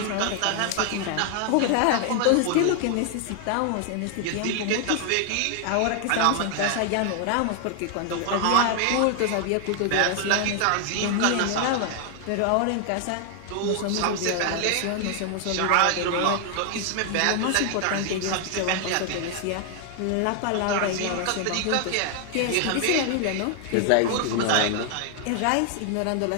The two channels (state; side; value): different; both; correlation 0.00